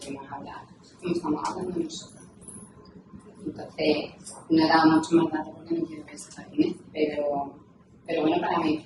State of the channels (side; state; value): both; identical; correlation 1.00